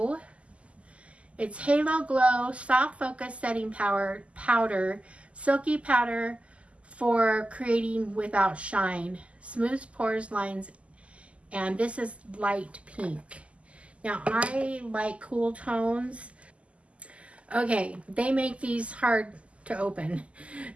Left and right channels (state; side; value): late; left; 0.060 ms